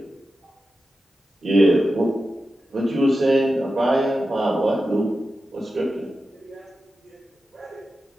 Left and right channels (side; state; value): both; normal; correlation 0.91